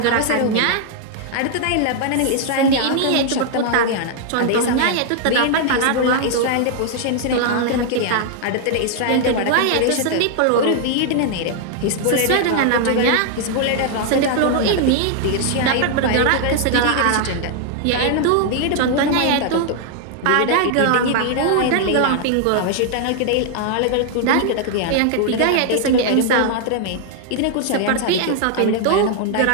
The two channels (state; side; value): different; both; correlation 0.00